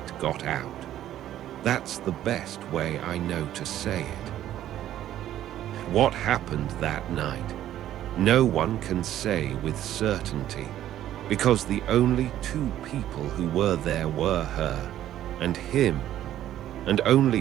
got out. That's the best way I know to say it. What happened that night, no one can say with certainty, because the only 2 people who were there were her and him, and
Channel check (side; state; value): left; quieter; 12.2 dB